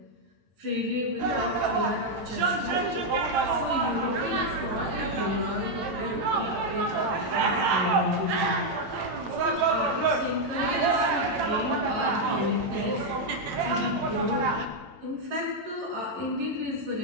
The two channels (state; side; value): late; left; 8.8 ms